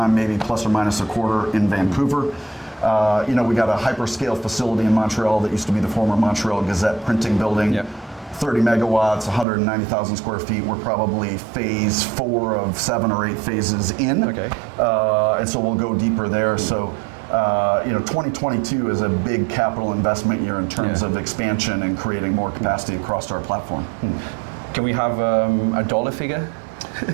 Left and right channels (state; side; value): drops out; left; at 9.5 s